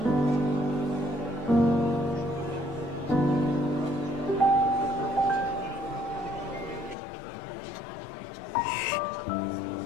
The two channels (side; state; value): right; drops out; at 7.0 s